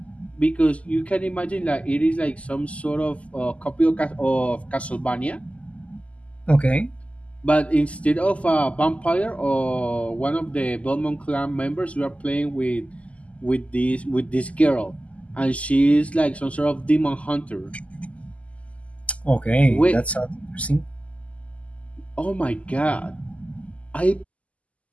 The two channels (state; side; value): late; right; 0.066 ms